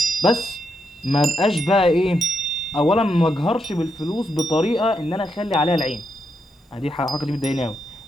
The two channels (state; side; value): normal; both; correlation 0.81